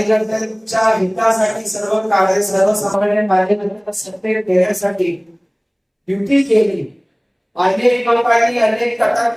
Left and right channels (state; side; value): identical; both; correlation 1.00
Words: हितासाठी सर्वसामान्य कार्यकर्त्यांना सत्तेत देण्यासाठी ड्युटी केली. अनेक लोकांनी अनेक